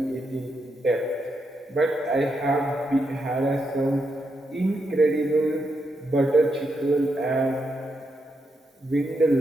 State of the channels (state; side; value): normal; both; correlation 0.82